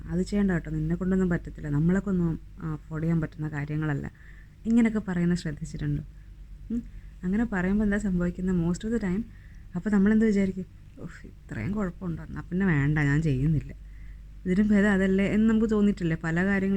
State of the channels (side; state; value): both; identical; correlation 1.00